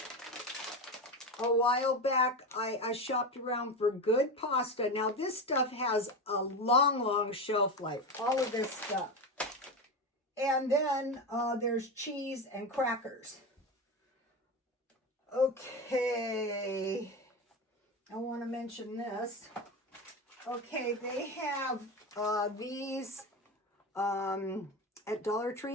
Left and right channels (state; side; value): normal; both; correlation 0.20